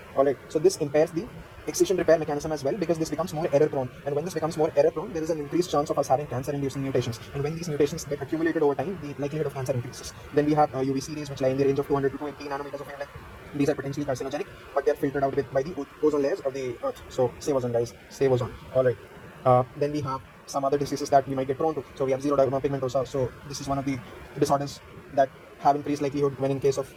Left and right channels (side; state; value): both; identical; correlation 1.00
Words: Alright, so this impairs the excision repair mechanism as well, because this becomes more error prone. And when this becomes more error prone, there is an increased chance of us having cancer inducing mutations. And when these mutations get accumulated over time, the likelihood of cancer increases. Then we have UVC rays, which lie in the range of 200 to 280 nanometers of wavelength. These are potentially carcinogenic, but they are filtered out by the ozone layers of the earth. So save ozone, guys, save ozone. Alright, then we have some other diseases that we might get prone to. So we have xeroderma pigmentosa. So this is one of the disorders that have increased likelihood when in case of